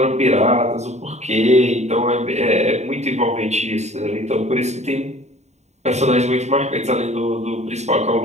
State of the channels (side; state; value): left; late; 0.32 ms